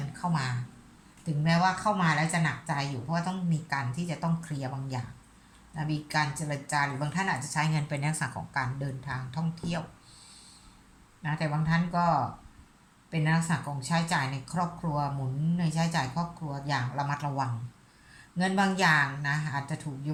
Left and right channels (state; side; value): identical; both; correlation 1.00